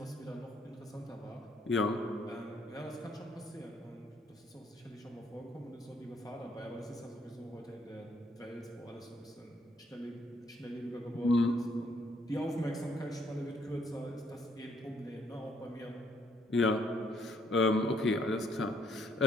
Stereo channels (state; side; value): normal; both; correlation 0.69